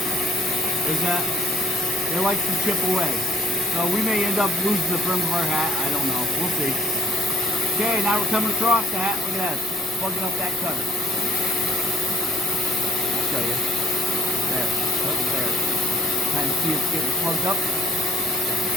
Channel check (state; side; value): normal; both; correlation 0.57